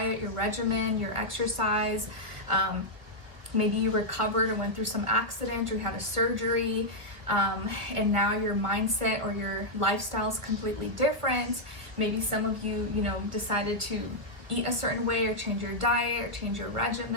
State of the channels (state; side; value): late; left; 1.2 ms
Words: your regimen, your exercise. Maybe you recovered or went through some accident or had a surgery, and now your mindset or your lifestyle is completely different. Maybe some of you, decided to eat a certain way or change your diet or change your